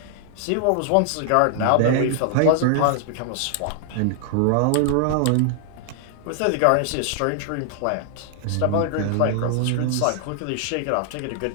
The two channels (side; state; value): both; different; correlation 0.00